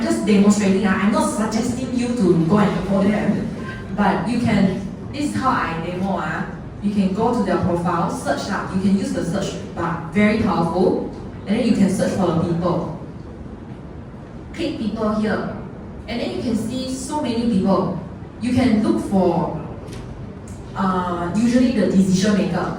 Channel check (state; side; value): identical; both; correlation 1.00